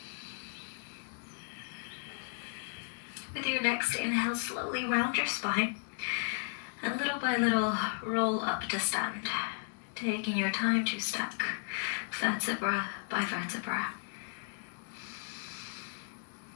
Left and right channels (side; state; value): right; silent; digital silence